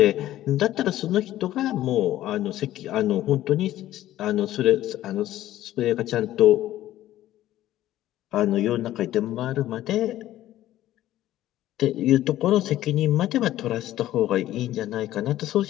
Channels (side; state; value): right; quieter; 13.9 dB